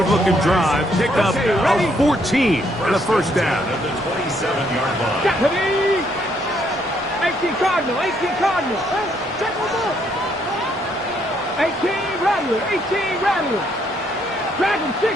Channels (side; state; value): both; normal; correlation 0.71